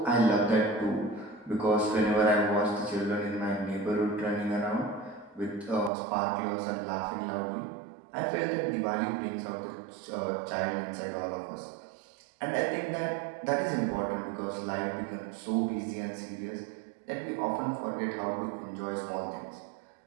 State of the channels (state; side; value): drops out; left; at 5.9 s